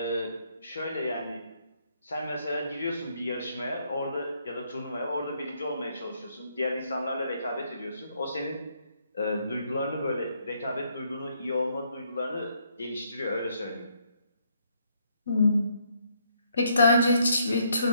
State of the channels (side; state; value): both; inverted; correlation -0.71